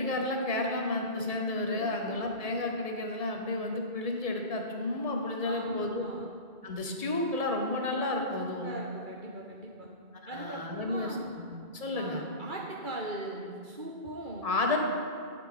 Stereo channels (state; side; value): late; left; 1.7 ms